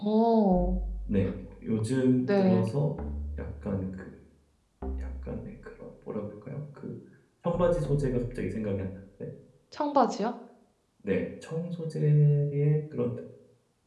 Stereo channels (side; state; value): both; identical; correlation 1.00